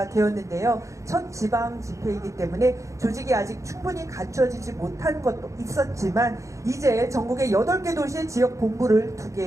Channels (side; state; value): left; late; 0.15 ms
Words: 되었는데요. 첫 지방 집회이기 때문에 조직이 아직 충분히 갖춰지지 못한 것도 있었지만 이제 전국의 8개 도시의 지역 본부를